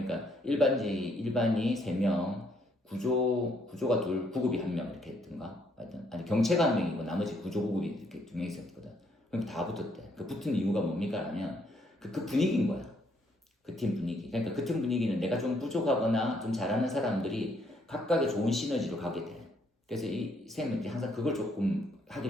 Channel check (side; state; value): both; normal; correlation 0.70